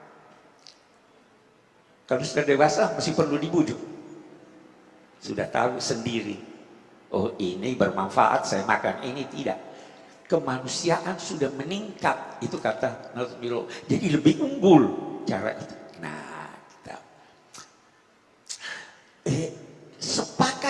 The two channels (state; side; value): identical; both; correlation 1.00